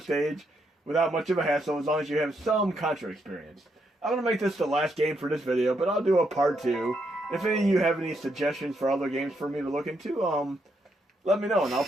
stage without much of a hassle as long as you have some Contra experience. I'm going to make this the last game for this video, but I'll do a part 2. If any of you have any suggestions for other games for me to look into, let me know and I'll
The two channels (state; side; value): normal; both; correlation 0.78